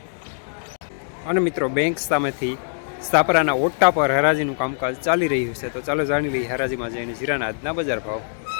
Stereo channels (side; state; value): right; silent; digital silence